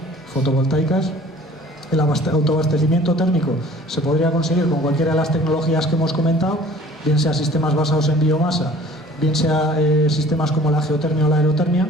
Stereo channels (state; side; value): normal; both; correlation 0.50